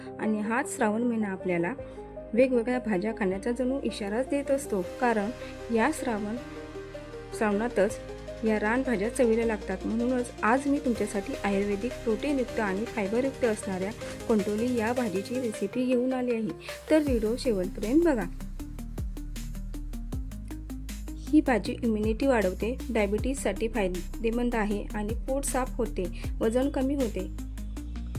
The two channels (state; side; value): identical; both; correlation 1.00